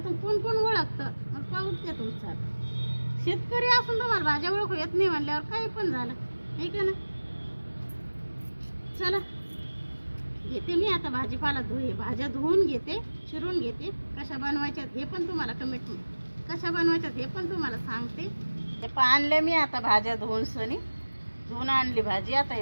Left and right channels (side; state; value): both; inverted; correlation -1.00